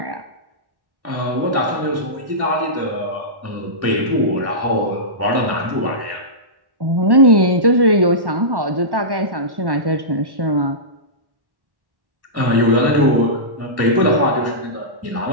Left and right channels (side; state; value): left; late; 1.1 ms